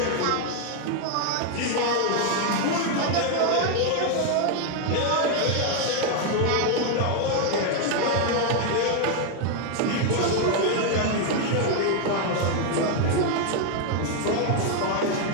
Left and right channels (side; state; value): both; different; correlation 0.01